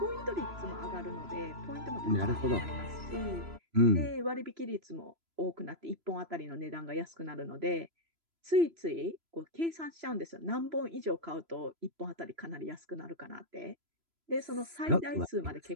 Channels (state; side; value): late; left; 3.0 ms